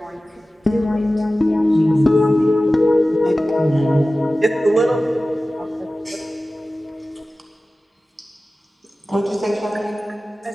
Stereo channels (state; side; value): normal; both; correlation 0.96